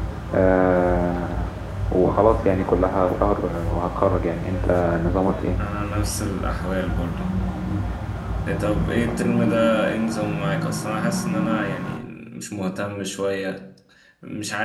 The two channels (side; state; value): both; identical; correlation 1.00